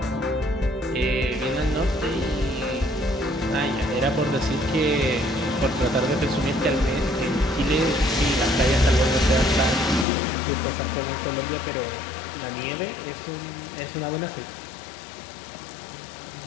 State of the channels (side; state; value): right; drops out; at 10.1 s